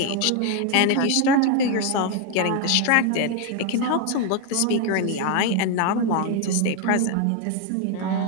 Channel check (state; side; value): different; both; correlation 0.01